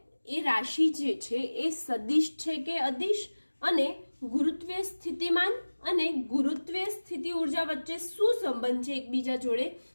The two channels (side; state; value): both; inverted; correlation -1.00